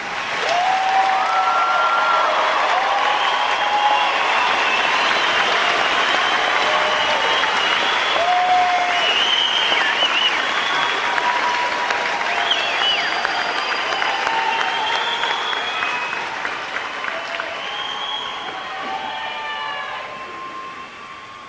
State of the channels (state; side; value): identical; both; correlation 1.00